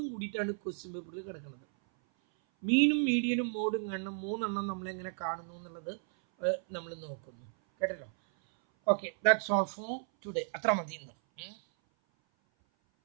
കൂടിയിട്ടാണ് ക്വസ്റ്റ്യൻ പേപ്പറിൽ കിടക്കുന്നത്. മീനും മീഡിയനും മോഡും കാണണം. 3 എണ്ണം നമ്മളെങ്ങനെ കാണുന്നു എന്നുള്ളത് നമ്മൾ നോക്കുന്നു. കേട്ടല്ലോ. Okay, that's all for today. അത്ര മതി ഇന്ന്.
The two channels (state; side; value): silent; left; 55 dB below the other